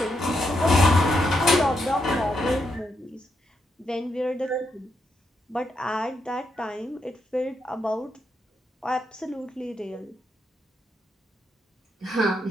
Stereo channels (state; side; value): normal; both; correlation 0.81